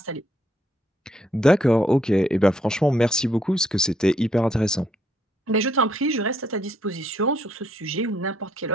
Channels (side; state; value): both; normal; correlation 0.71